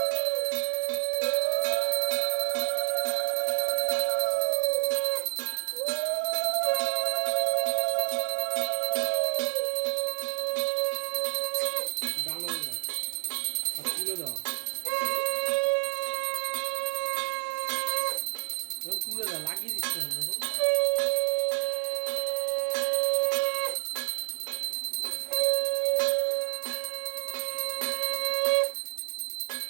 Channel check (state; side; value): silent; left; digital silence